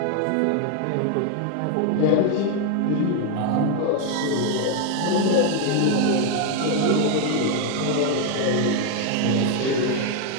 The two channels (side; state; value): both; different; correlation 0.01